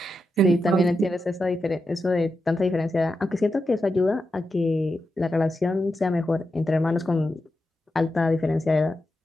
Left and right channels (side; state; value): both; normal; correlation 0.88